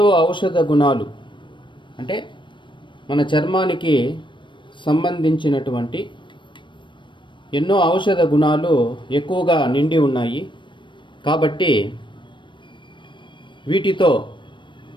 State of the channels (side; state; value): right; late; 0.23 ms